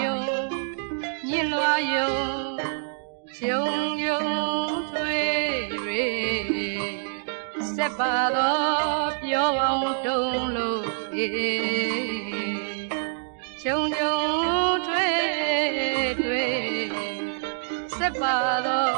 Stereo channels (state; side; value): silent; left; digital silence